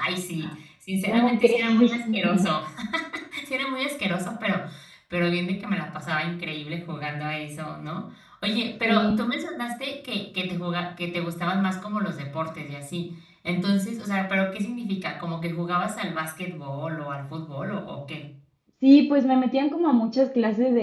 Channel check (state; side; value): identical; both; correlation 1.00